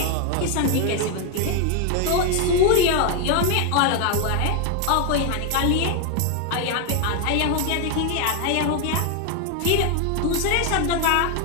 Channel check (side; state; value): both; different; correlation 0.01